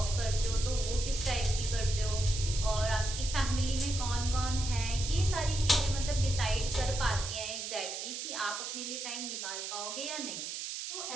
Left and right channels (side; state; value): right; noise; hiss, 5 dB below the sound